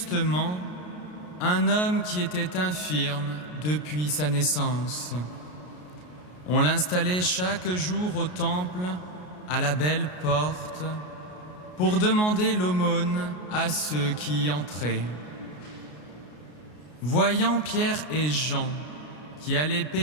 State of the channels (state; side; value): late; right; 33 ms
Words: un homme qui était infirme depuis sa naissance. On l'installait chaque jour au temple, à la belle porte, pour demander l'aumône à ceux qui y entraient. Voyant Pierre et Jean qui allaient